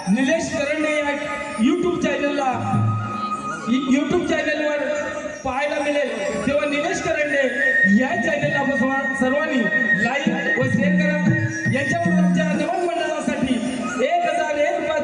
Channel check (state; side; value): identical; both; correlation 1.00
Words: निलेश करंडे या यूट्यूब चॅनलवर पाहायला मिळेल, तेव्हा निलेश करंडे या चॅनलला सर्वांनी लाईक व शेअर करा। याच्यावरून आमच्या नमन मंडळासाठी 1001